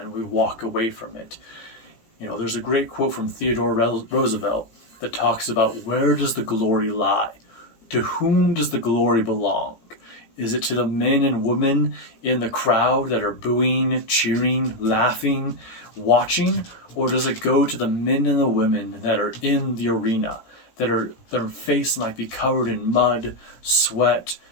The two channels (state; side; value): late; right; 17 ms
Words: we walk away from it. You know, there's a great quote from Theodore Roosevelt that talks about, where does the glory lie? To whom does the glory belong? Is it to the men and women in the crowd that are booing, cheering, laughing, watching? Or does it go to the men and the women that are in the arena, their face might be covered in mud, sweat,